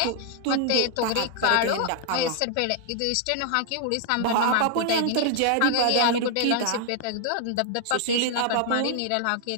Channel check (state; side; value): different; both; correlation 0.00